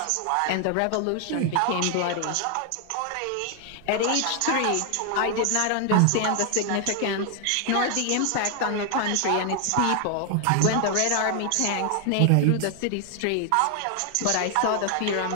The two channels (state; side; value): different; both; correlation 0.00